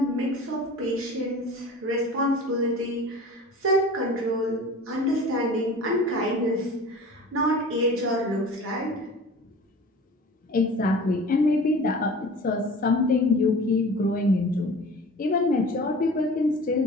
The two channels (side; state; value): both; normal; correlation 0.40